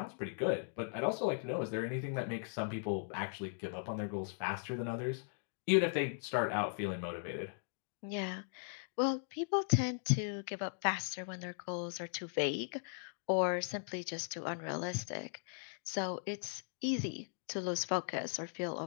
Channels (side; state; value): right; silent; digital silence